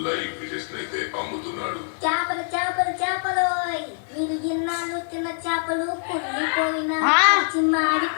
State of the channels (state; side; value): silent; right; digital silence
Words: లైవ్ ఫిషెస్ అయితే అమ్ముతున్నాడు. చేపలు చేపలు చేపలు, మీరు ఇన్నాళ్ళు తిన్న చేపలు కుళ్ళిపోయిన